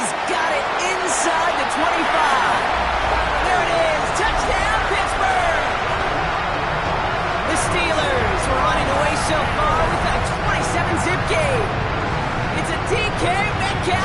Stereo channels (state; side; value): identical; both; correlation 1.00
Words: got it inside the 25. There it is. Touchdown, Pittsburgh. The Steelers were running away so far with a 27-zip game. It's a DK